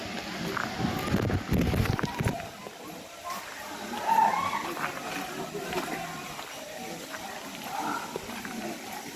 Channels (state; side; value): identical; both; correlation 1.00